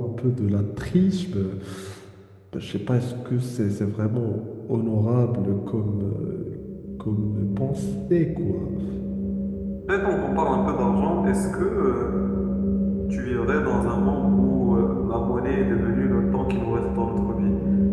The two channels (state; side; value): identical; both; correlation 1.00